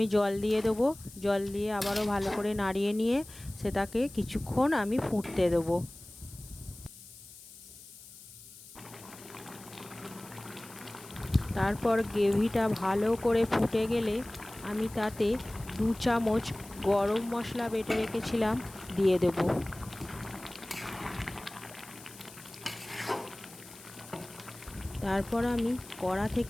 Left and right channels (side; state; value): left; noise; hiss, 19 dB below the sound